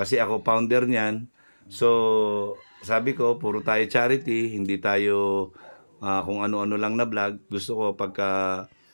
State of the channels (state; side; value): inverted; both; correlation -1.00